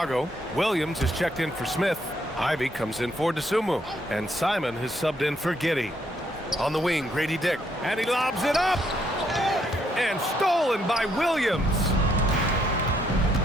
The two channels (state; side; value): normal; both; correlation 0.73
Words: Williams is checked in for Smith. Ivy comes in for Dosunmu. And Simon has subbed in for Giddey. On the wing, Grady Dick. And he lobs it up! And stolen by Williams.